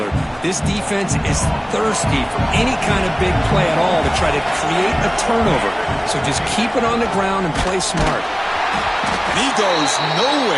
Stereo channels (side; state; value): both; identical; correlation 1.00